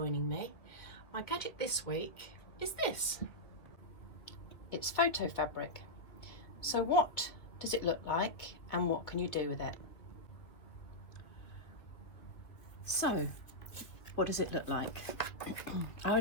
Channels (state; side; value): late; right; 2.4 ms